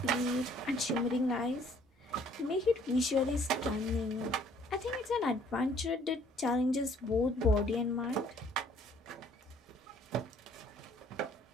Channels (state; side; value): normal; both; correlation 0.60